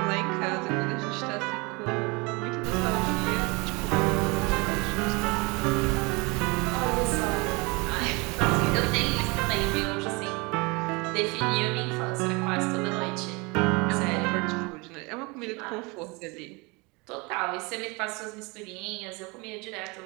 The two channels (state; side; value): quieter; left; 27.4 dB